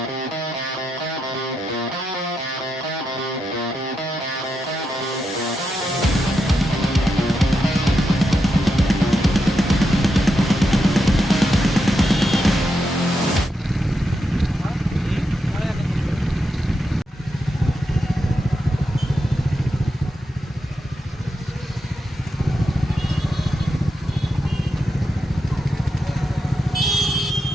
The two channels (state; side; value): normal; both; correlation 0.85